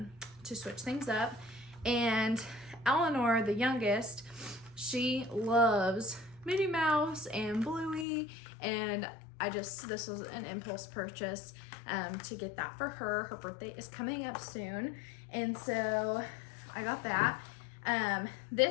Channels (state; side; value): drops out; right; at 8.1 s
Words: switch things up. And Eleanor, the youngest, she loves Minnie Mouse and Bluey, and this was an impulse purchase to get that for her. Her birthday is coming up soon, and so I got that.